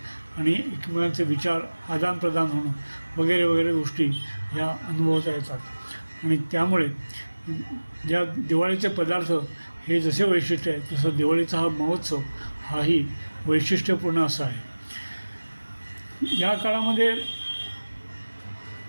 आणि एकमेकांचे विचार आदानप्रदान होणं वगैरे वगैरे गोष्टी ह्या अनुभवता येतात. आणि त्यामुळे ज्या दिवाळीचे पदार्थ हे जसे वैशिष्ट्य आहे तसं दिवाळीचा हा महोत्सव हाही वैशिष्ट्यपूर्ण असा आहे. या काळामध्ये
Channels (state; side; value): inverted; both; correlation -1.00